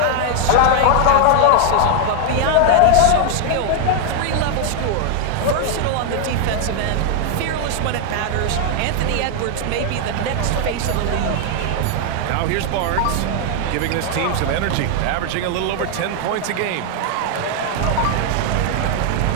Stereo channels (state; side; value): different; both; correlation 0.00